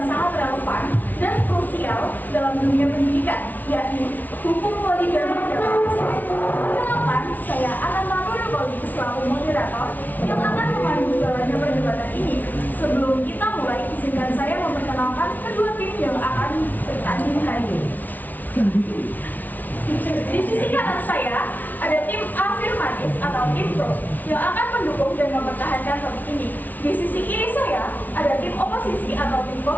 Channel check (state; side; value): late; right; 0.080 ms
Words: sangat relevan dan krusial dalam dunia pendidikan, yakni hukum poligami dalam Islam. Kenalkan, saya akan Nurul selaku moderator yang akan memandu jalannya perdebatan ini. Sebelum kita mulai, izinkan saya memperkenalkan kedua tim yang akan bertanding hari ini. Di sisi kanan saya ada tim afirmatif atau tim pro yang akan mendukung dan mempertahankan topik ini. Di sisi kiri saya ada tim oposisi atau tim